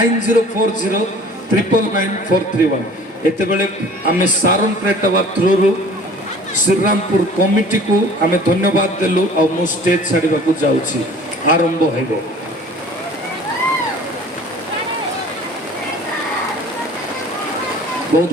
एते बेले आमे सारन प्रेटवा थ्रू श्रीरामपुर कमिटी को आमे धन्यवाद देलु और मु स्टेज छाड़ीबा को जाउछि आरंभ हेबो बहुत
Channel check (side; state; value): both; normal; correlation 0.47